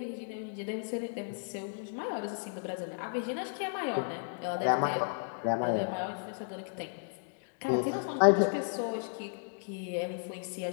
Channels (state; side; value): silent; right; digital silence